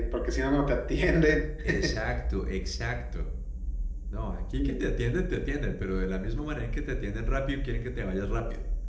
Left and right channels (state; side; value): identical; both; correlation 1.00